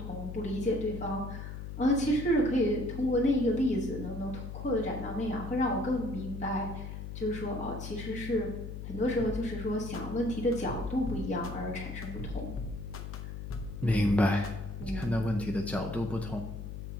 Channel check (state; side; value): noise; left; hum, 8 dB below the sound